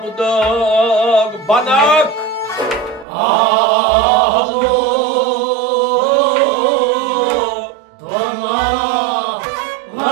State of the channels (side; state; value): left; drops out; at 3.1 s